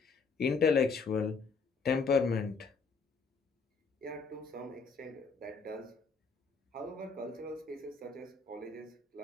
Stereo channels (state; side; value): quieter; right; 4.7 dB